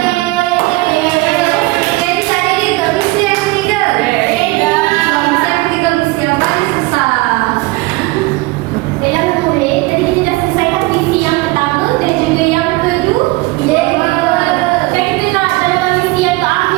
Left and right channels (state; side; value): quieter; left; 22.3 dB